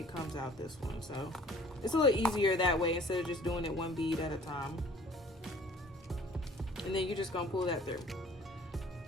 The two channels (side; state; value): both; normal; correlation 0.53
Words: comes out this one, so it's a little easier that way instead of just doing it one bead at a time. And then you're just gonna pull that through,